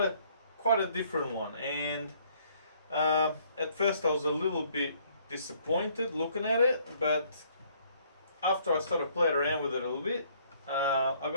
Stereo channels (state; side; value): inverted; both; correlation -0.64